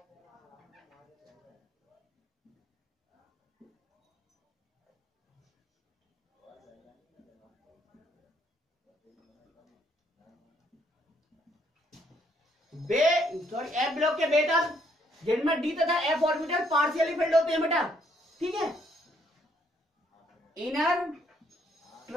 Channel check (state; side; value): normal; both; correlation 0.69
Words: बे सॉरी एफ ब्लॉक के बे तत्व जिनमें डी तथा एफ ऑर्बिटल पार्शियली फिल्ड होते हैं बेटा, ठीक है। इनर